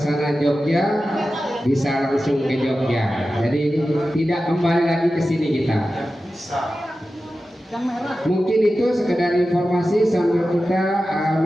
Jogja, bisa langsung ke Jogja. Jadi tidak kembali lagi ke sini kita. Mungkin itu sekedar informasi sambil kita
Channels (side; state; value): both; normal; correlation 0.93